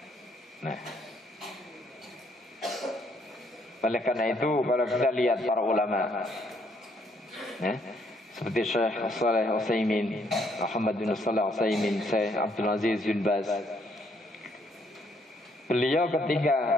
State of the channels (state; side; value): normal; both; correlation 0.69